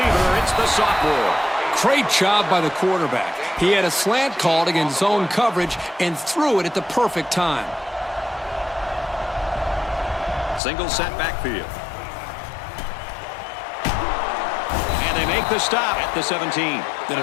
It's the sophomore. Great job by the quarterback. He had a slant called against zone coverage and threw it at the perfect time. Single set backfield. make the stop at the 17. The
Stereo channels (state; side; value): drops out; right; at 10.6 s